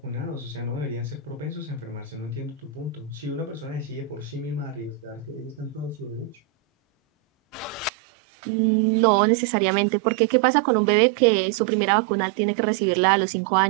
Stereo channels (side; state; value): left; drops out; at 7.9 s